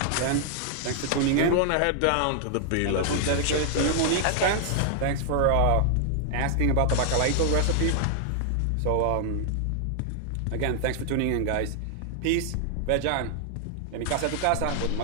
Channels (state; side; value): different; both; correlation 0.00